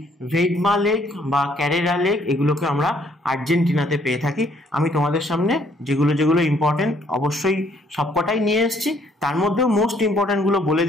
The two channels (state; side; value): normal; both; correlation 0.65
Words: ভেডমা লেক বা ক্যারেরা লেক, এগুলোকে আমরা আর্জেন্টিনাতে পেয়ে থাকি। আমি তোমাদের সামনে যেগুলো যেগুলো ইম্পর্টেন্ট অবশ্যই সবকটাই নিয়ে এসেছি, তার মধ্যেও মোস্ট ইম্পর্ট্যান্টগুলো বলে